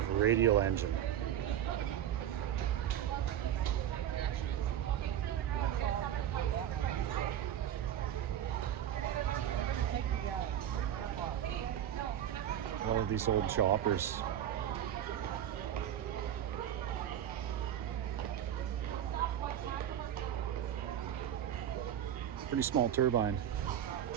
radial engine. One of these old choppers. Pretty small turbine.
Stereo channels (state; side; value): quieter; left; 10.6 dB